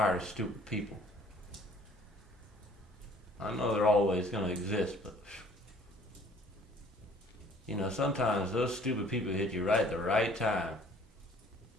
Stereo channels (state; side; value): normal; both; correlation 0.55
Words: of stupid people. I know they're always going to exist, but sometimes those stupid people hit you right at the right time.